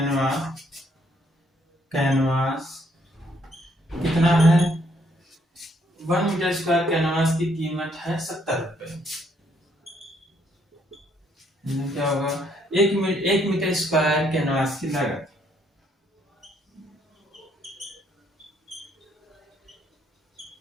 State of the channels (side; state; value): both; normal; correlation 0.70